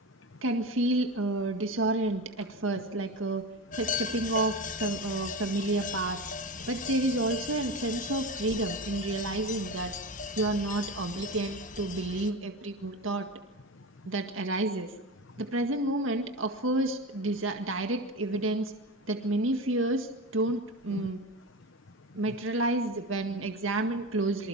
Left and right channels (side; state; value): both; normal; correlation 0.24